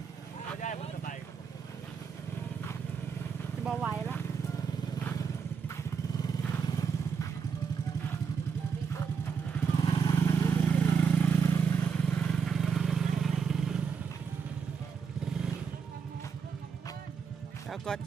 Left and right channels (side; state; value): left; quieter; 6.2 dB